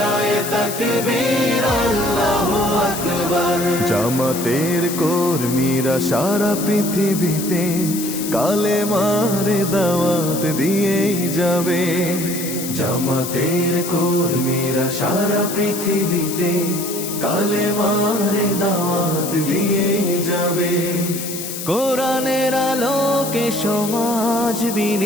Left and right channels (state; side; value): noise; left; hiss, 7 dB below the sound